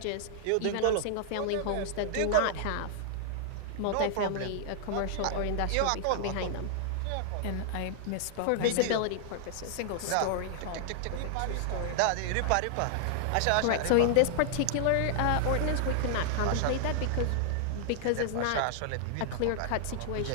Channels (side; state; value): both; different; correlation -0.01